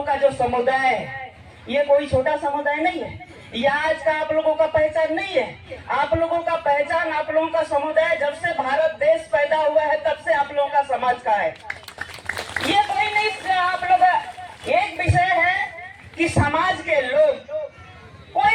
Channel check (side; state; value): both; identical; correlation 1.00